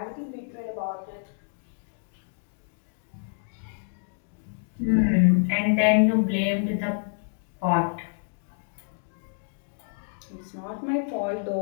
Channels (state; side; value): silent; right; digital silence